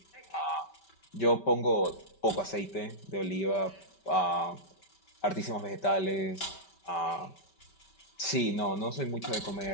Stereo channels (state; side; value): late; right; 5.2 ms